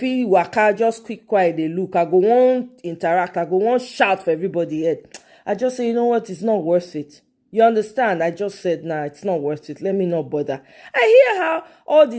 waka, just quiet, they look. I go on interact. I go on shout for everybody head. I just say, you know what? It's not worth it. You understand? I just said, nah, it's not worth it. Let me not bother. I hear how all the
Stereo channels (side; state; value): both; identical; correlation 1.00